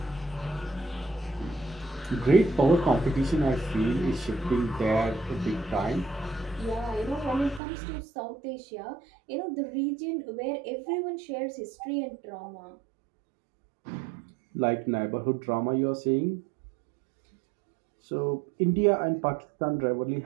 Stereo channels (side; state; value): left; drops out; at 7.6 s